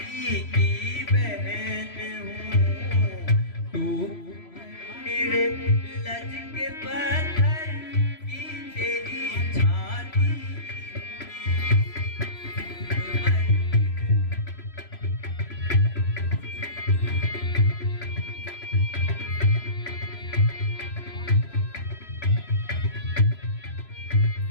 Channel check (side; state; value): right; late; 3.0 ms